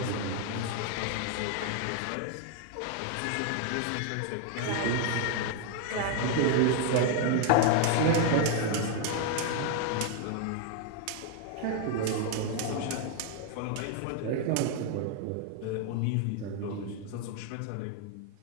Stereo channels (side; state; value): both; different; correlation 0.00